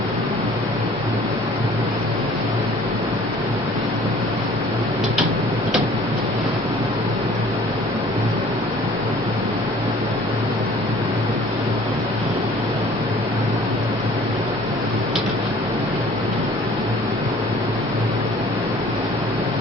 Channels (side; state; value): both; normal; correlation 0.51